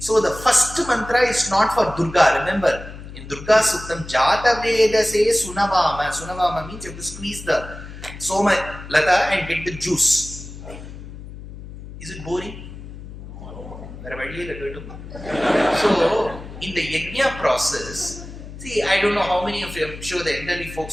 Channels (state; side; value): noise; left; hum, 13 dB below the sound